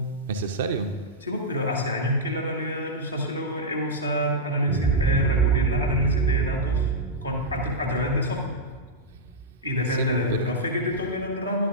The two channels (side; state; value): both; normal; correlation -0.10